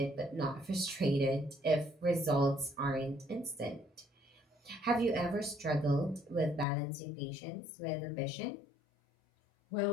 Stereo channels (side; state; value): right; drops out; at 6.7 s